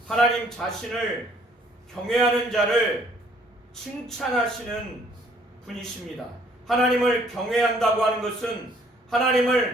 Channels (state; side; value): normal; both; correlation 0.61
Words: 하나님 자신을 경외하는 자를 칭찬하시는 분이십니다. 하나님을 경외한다고 하는 것은